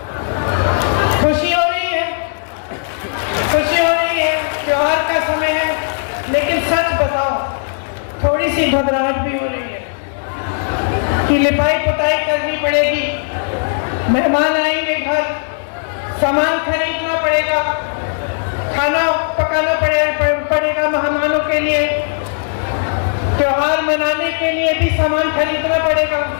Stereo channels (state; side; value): silent; right; digital silence